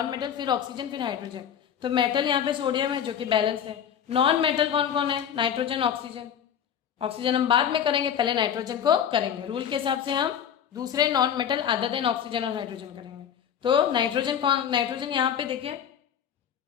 मेटल, फिर ऑक्सीजन, फिर हाइड्रोजन। तो मेटल यहाँ पे सोडियम है जो कि बैलेंस है। नॉन मेटल कौन कौन है, नाइट्रोजन, ऑक्सीजन। ऑक्सीजन हम बाद में करेंगे, पहले नाइट्रोजन को करेंगे। रूल के हिसाब से हम दूसरे non metal other than oxygen और हाइड्रोजन करेंगे। तो नाइट्रोजन कौन, नाइट्रोजन यहाँ पे देखिए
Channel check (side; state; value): right; quieter; 8.8 dB